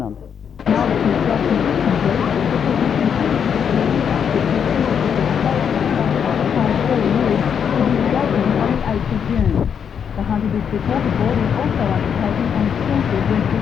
The Hunter District Water Board is also undertaking an extensive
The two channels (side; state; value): right; quieter; 7.6 dB